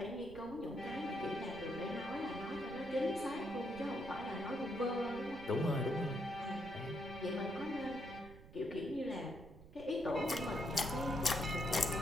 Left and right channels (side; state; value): right; noise; rumble, 17 dB below the sound